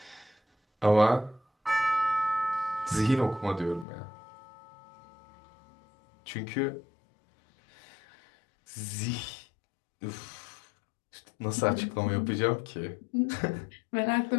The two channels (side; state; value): right; drops out; at 3.9 s